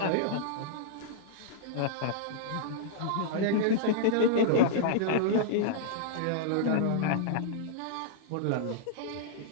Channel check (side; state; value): both; different; correlation -0.02